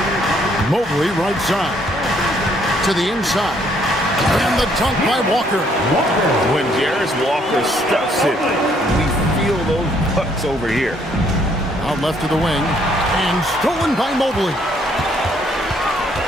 Mobley right side. To the inside. And the dunk by Walker. When Jarris Walker stuffs it, we feel those pucks over here. Out left to the wing. And stolen by Mobley.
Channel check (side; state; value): both; normal; correlation 0.67